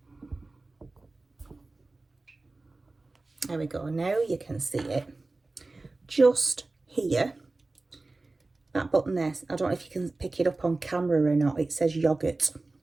There we go. Now you can see it. Just here, that button there, I don't know if you can pick it up on camera or not. It says yogurt.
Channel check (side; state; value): left; quieter; 3.3 dB